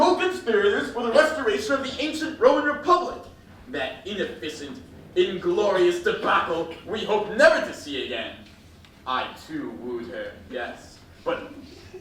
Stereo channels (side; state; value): both; identical; correlation 1.00